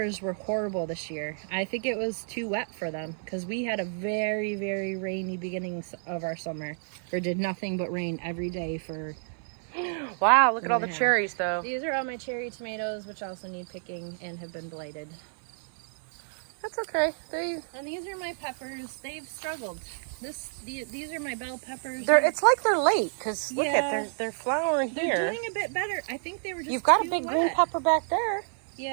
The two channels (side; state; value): left; silent; 58 dB below the other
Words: were horrible this year. I think it was too wet for them because we had a very, very rainy beginning of our summer. Or did nothing but rain every day for wow, look at all the Yeah. cherries, though. These are all my cherry tomatoes, which also need picking and have been blighted. That's okay. And these are my peppers. They've struggled. These are my bell peppers. It's like they're late, because look Yeah. at, they're flowering here. They're doing a bit better. I think they were just You've got a too big wet. green pepper back there.